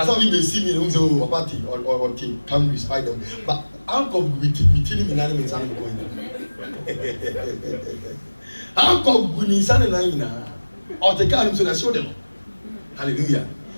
how we may see me in a party or team, come respite them. But how come we tell him in animals and going? How come we need something or the car so that show them? Hallelujah.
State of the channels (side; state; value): both; inverted; correlation -1.00